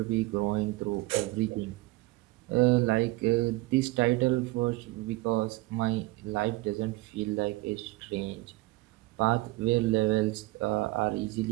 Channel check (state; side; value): quieter; left; 20.7 dB